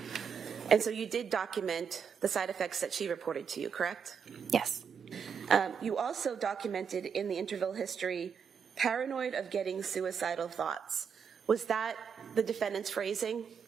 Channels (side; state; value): left; quieter; 6.7 dB